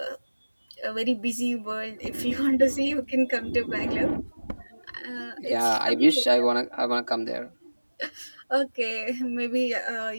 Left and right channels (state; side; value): inverted; both; correlation -1.00